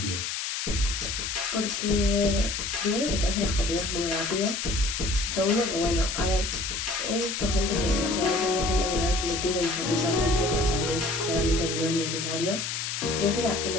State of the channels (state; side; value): noise; left; hiss, 3 dB below the sound